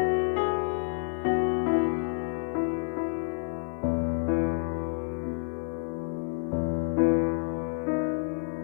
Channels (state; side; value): silent; right; digital silence